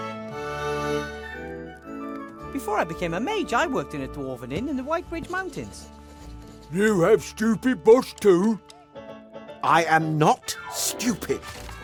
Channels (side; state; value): both; identical; correlation 1.00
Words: Before I became a mage, I worked in a dwarven inn in the White Ridge Mountains. You have stupid boss too? I am not stupid.